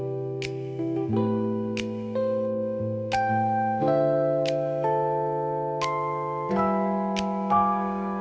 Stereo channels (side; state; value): both; identical; correlation 1.00